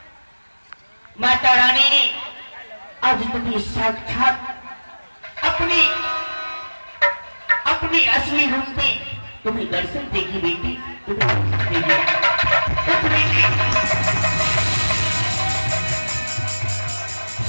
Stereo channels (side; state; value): both; inverted; correlation -1.00